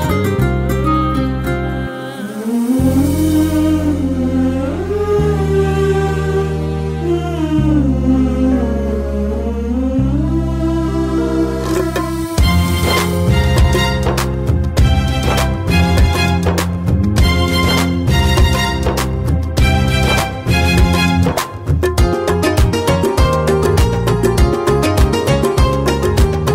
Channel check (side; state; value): both; identical; correlation 1.00